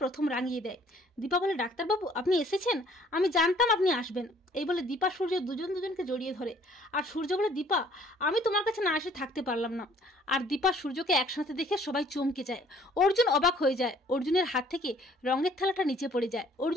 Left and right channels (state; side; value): normal; both; correlation 0.58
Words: প্রথম রাঙিয়ে দেয়। দীপা বলে, ডাক্তারবাবু আপনি এসেছেন, আমি জানতাম আপনি আসবেন। এই বলে দীপা সূর্য দুজনকে জড়িয়ে ধরে, আর সূর্য বলে, দীপা আমি তোমার কাছে না এসে থাকতে পারলাম না। আর দীপা সূর্যকে একসাথে দেখে সবাই চমকে যায়। অর্জুন অবাক হয়ে যায়, অর্জুনের হাত থেকে রঙের থালাটা নিচে পড়ে যায়,